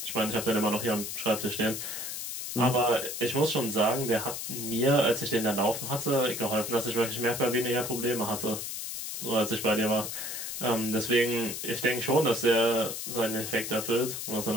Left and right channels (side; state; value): left; noise; hiss, 6 dB below the sound